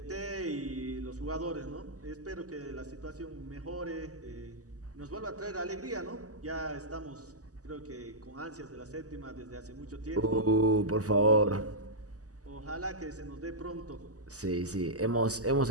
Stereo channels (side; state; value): left; late; 0.67 ms